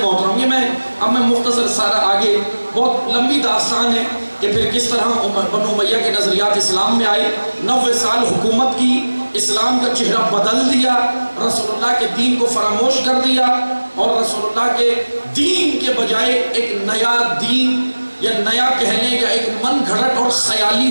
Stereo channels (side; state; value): both; inverted; correlation -1.00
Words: یہ اب میں مختصر سارا آگے بہت لمبی داستان ہے کہ پھر کس طرح بنو امیہ کے نظریات اسلام میں آئے، 90 سال حکومت کی، اسلام کا چہرہ بدل دیا، رسول اللہ کے دین کو فراموش کر دیا، اور رسول اللہ کے دین کے بجائے ایک نیا دین یا نیا کہنے کا ایک من گھڑت اور خیالی